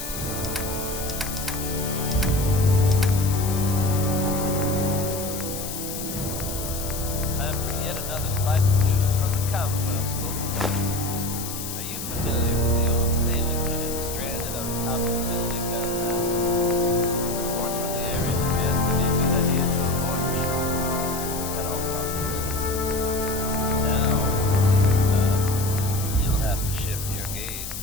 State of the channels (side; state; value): left; noise; hiss, 7 dB below the sound